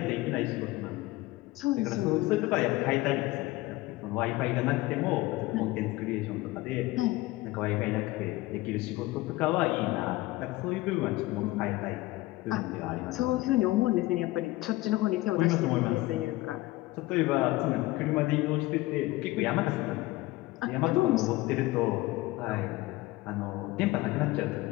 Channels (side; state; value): right; quieter; 19.0 dB